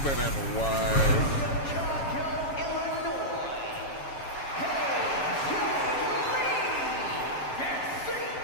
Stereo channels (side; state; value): right; late; 7.2 ms